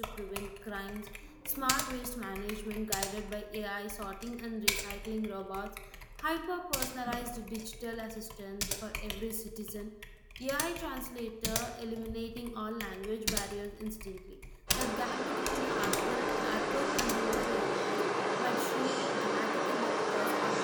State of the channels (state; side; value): identical; both; correlation 1.00